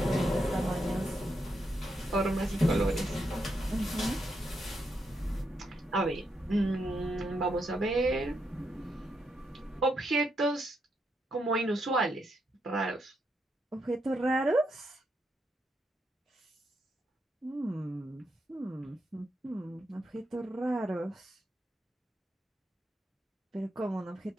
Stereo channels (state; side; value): normal; both; correlation 0.81